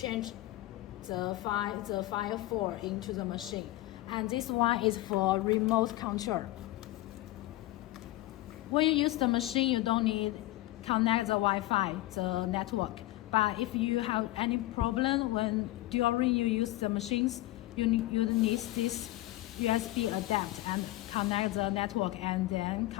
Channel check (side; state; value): right; quieter; 17.4 dB